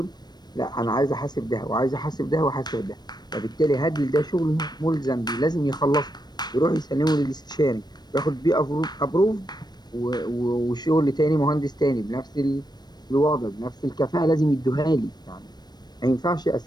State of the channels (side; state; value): right; late; 0.20 ms